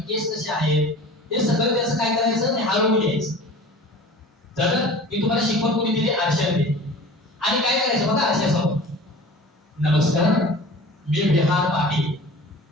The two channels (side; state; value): both; normal; correlation 0.40